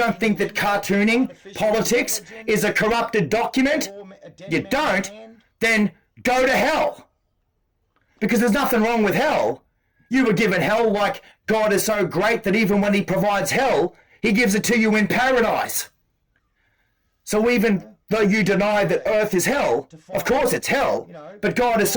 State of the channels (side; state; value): both; identical; correlation 1.00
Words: think that cartooning politics is a corrupted document? You don't? Then go to hell. Because there's nothing wrong with hell. You were given hell like God is so great that even when he provides hell, he gives it to you in paradise. So even though you deny that earth is hell, of course it's hell, but God is